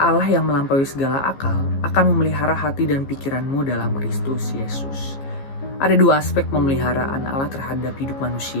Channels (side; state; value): right; late; 15 ms